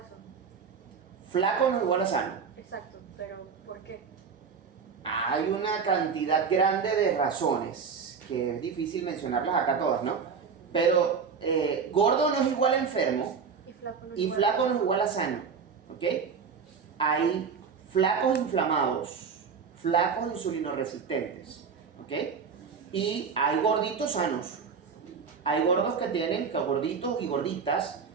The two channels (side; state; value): left; quieter; 5.9 dB